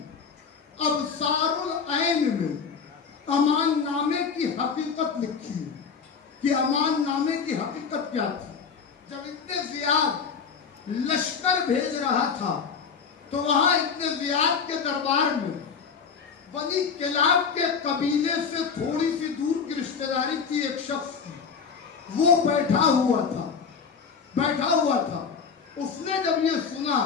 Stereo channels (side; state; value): right; quieter; 6.0 dB